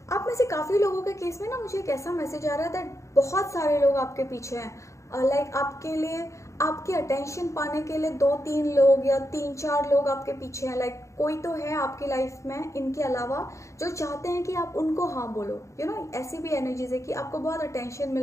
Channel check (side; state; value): right; late; 0.15 ms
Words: आप में से काफ़ी लोगों के केस में ना मुझे एक ऐसा मैसेज आ रहा है दैट बहुत सारे लोग आपके पीछे हैं। लाइक आपके लिए, आपकी अटेंशन पाने के लिए 2-3 लोग या 3-4 लोग आपके पीछे हैं। लाइक कोई तो है आपकी लाइफ में इनके अलावा जो चाहते हैं कि आप उनको हाँ बोलो। ऐसी भी एनर्जीज है कि आपको बहुत अटेंशन